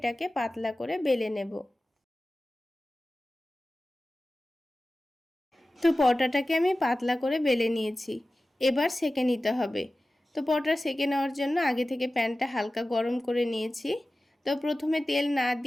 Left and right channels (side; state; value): both; normal; correlation 0.96